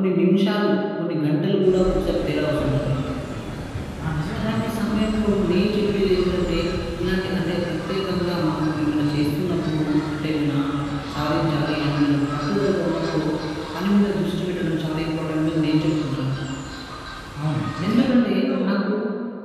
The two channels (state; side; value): identical; both; correlation 1.00